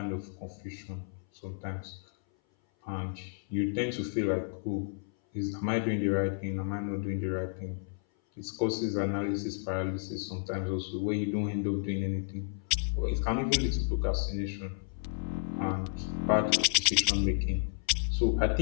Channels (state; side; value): silent; right; 56 dB below the other